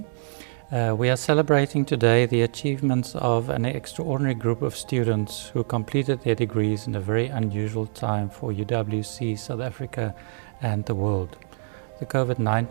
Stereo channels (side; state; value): left; silent; 62 dB below the other